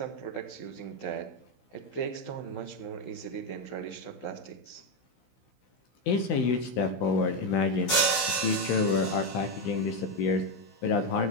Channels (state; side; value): late; right; 16 ms